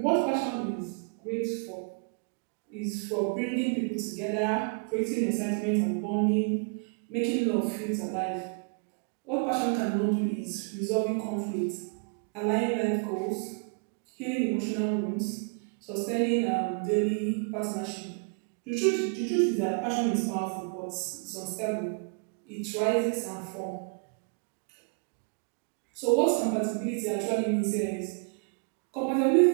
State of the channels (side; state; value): left; quieter; 38.6 dB